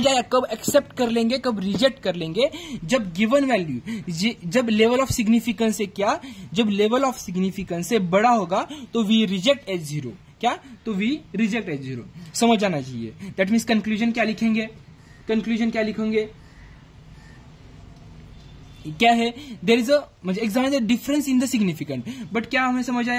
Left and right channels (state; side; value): identical; both; correlation 1.00